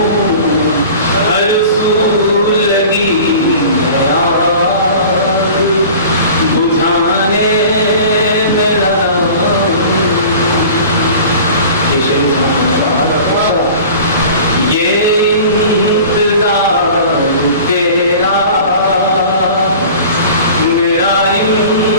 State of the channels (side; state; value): both; inverted; correlation -0.41